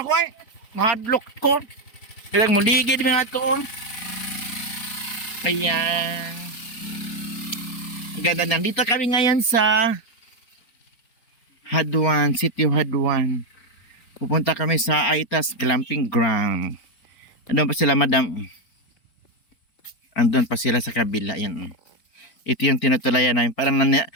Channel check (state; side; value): late; right; 4.3 ms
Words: ako, uy. Mahadlock ko. Kaya muligid mga to, oh. Ayan. Ang ganda, nandito kami ngayon sa Haduan, City of Haduan. Pupunta kami sa Aitas Glamping Ground. Andun pa sila, madam. Andun pa sila sa kabila. Yan. Ito yung tinutulayan namin. Parang